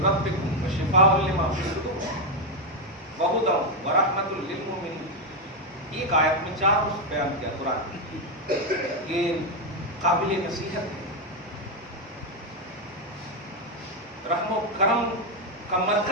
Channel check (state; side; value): normal; both; correlation 0.04